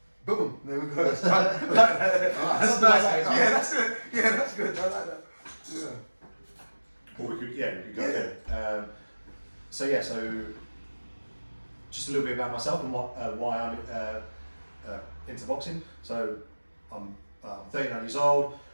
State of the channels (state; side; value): inverted; both; correlation -1.00